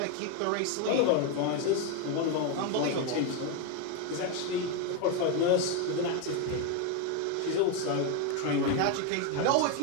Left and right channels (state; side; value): different; both; correlation 0.02